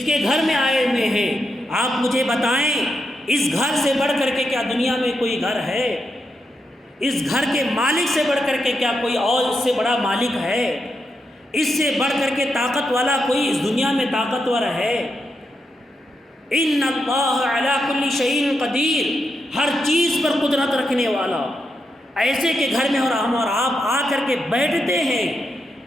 کے گھر میں آئے ہوئے ہیں؟ آپ مجھے بتائیں اس گھر سے بڑھ کر کے کیا دنیا میں کوئی گھر ہے؟ اس گھر کے مالک سے بڑھ کر کے کیا کوئی اور اس سے بڑا مالک ہے؟ اس سے بڑھ کر کے طاقت والا کوئی اس دنیا میں طاقتور ہے؟ ان اللہ علی کل شیء قدیر، ہر چیز پر قدرت رکھنے والا، ایسے کے گھر میں اور ہم اور آپ آ کر کے بیٹھتے ہیں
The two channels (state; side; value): normal; both; correlation 0.84